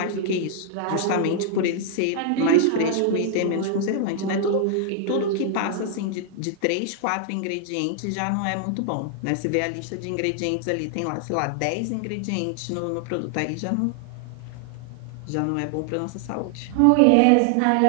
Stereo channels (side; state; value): both; different; correlation 0.00